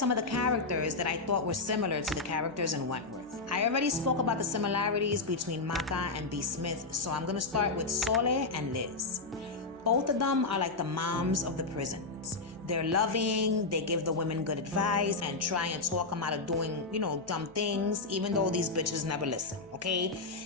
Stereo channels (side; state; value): right; quieter; 3.8 dB